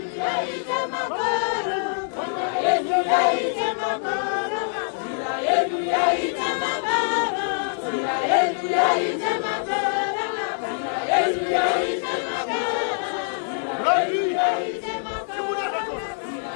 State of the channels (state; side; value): silent; right; digital silence